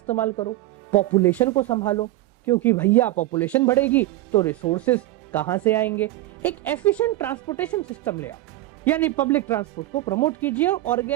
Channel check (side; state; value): left; quieter; 16.5 dB